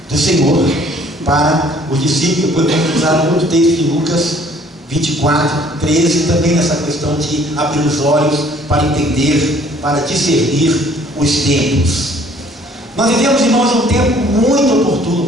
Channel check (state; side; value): normal; both; correlation 0.57